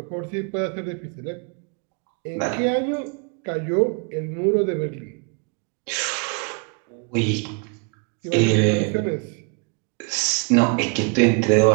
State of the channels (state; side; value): quieter; left; 34.8 dB